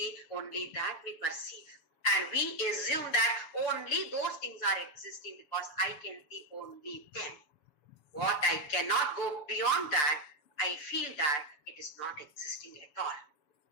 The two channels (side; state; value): right; late; 7.1 ms